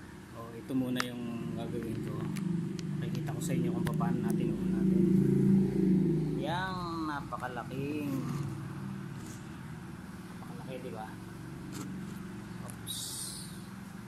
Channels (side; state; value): both; identical; correlation 1.00